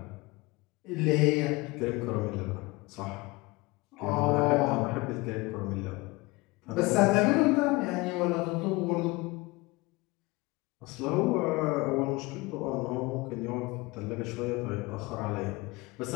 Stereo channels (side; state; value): right; quieter; 23.2 dB